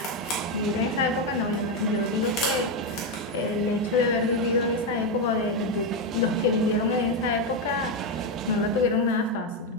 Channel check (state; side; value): normal; both; correlation 0.07